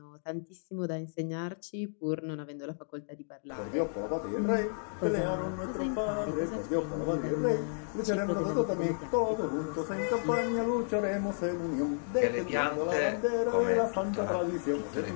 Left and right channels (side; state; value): right; silent; digital silence